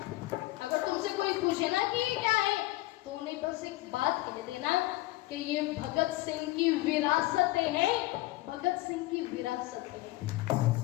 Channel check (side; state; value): right; quieter; 18.9 dB